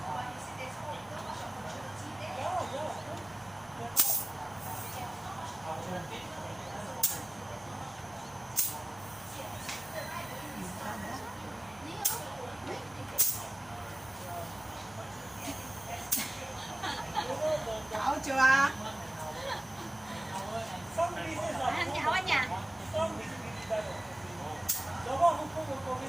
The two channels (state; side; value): noise; right; rumble, 27 dB below the sound